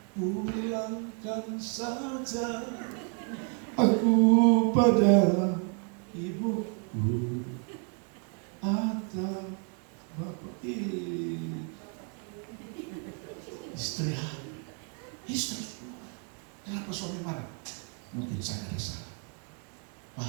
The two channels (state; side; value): quieter; left; 39.8 dB